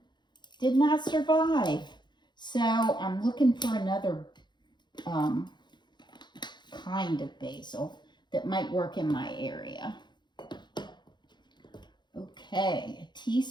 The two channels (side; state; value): right; late; 0.21 ms